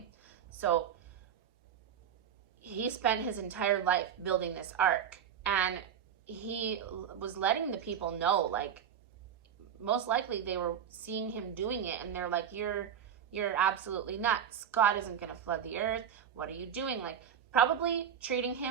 So he spent his entire life building this ark, and he was letting the people know, like, most likely they were seeing him doing it and they're like, you're absolutely nuts. God isn't going to flood the earth. What are you doing? Like, probably treating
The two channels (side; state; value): left; quieter; 8.7 dB